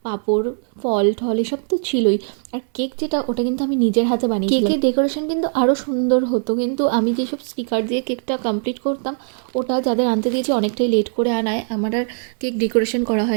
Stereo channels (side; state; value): left; silent; 63 dB below the other